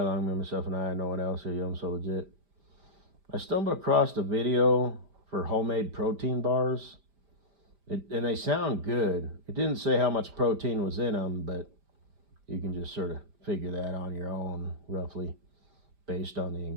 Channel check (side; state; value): left; late; 5.0 ms